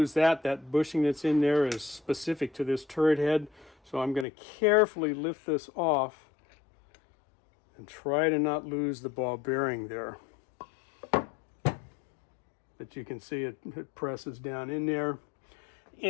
that. That bushing that's in there is specific to this turret head. So I'm going to carefully lift this off and try to not lose the ball bearing there. But you can see it presses down in there.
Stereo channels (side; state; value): right; drops out; at 4.2 s